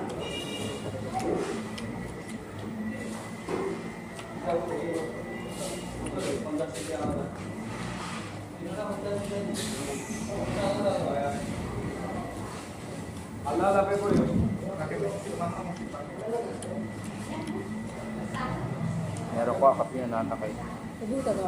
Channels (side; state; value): both; identical; correlation 1.00